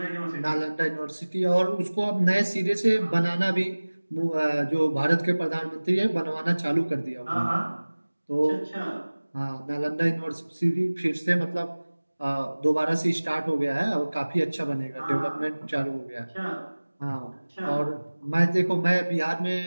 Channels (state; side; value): inverted; both; correlation -1.00